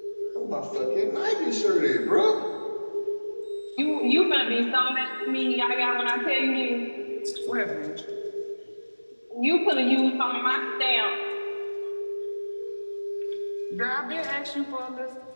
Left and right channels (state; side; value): inverted; both; correlation -1.00